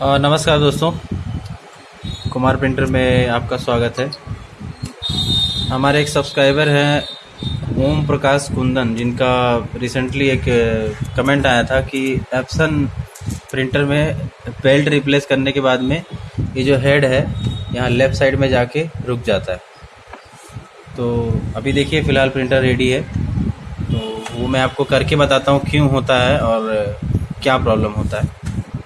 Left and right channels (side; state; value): both; identical; correlation 1.00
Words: दोस्तों, कुमार प्रिंटर में आपका स्वागत है। हमारे एक सब्सक्राइबर हैं ओम प्रकाश कुंदन, जिनका रिसेंटली एक कमेंट आया था कि एप्सन प्रिंटर में बेल्ट रिप्लेस करने के बाद में ये जो हेड है यहाँ लेफ़्ट साइड में जाके रुक जाता है। तो अभी देखिए फ़िलहाल प्रिंटर रेडी है, तो वो मैं आपको करके बताता हूँ क्यों होता है और क्या प्रॉब्लम होता है।